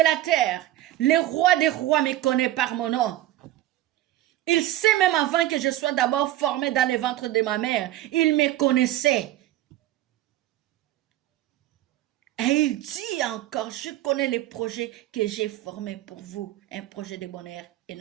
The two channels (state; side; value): quieter; left; 14.4 dB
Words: terre, le roi des rois me connaît par mon nom. Il sait même avant que je sois d'abord formé dans le ventre de ma mère. Il me connaissait. Et il dit encore, je connais les projets que j'ai formés pour vous. Un projet de bonheur et